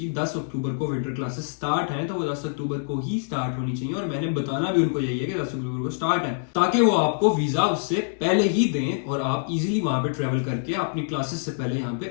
10 अक्टूबर को विंटर क्लासेस स्टार्ट हैं, तो वो 10 अक्टूबर को ही स्टार्ट होनी चाहिए और मैंने बताना भी उनको यही है कि 10 अक्टूबर को स्टार्ट है, ताकि वो आपको वीजा उससे पहले ही दें और आप इजीली वहां पे ट्रेवल करके अपनी क्लासेस से पहले यहाँ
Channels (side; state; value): right; silent; digital silence